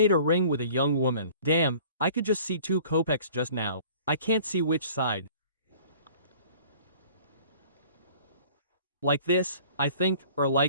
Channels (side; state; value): both; inverted; correlation -0.49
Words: a ring with a young woman. Damn, I could just see 2 kopecks just now. I can't see which side. Like this, I think, or